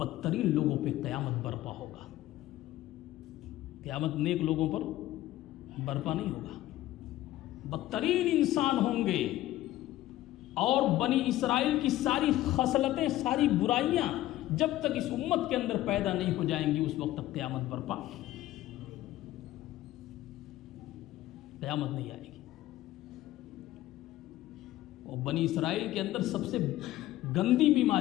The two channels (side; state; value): right; quieter; 15.2 dB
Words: لوگوں پہ قیامت برپا ہوگا۔ قیامت نیک لوگوں پر برپا نہیں ہوگا، بدترین انسان ہوں گے، اور بنی اسرائیل کی ساری خصلتیں، ساری برائیاں جب تک اس امت کے اندر پیدا نہیں ہو جائیں گی اس وقت تک قیامت برپا، قیامت نہیں آئے گی۔ اور بنی اسرائیل کے اندر سب سے گندی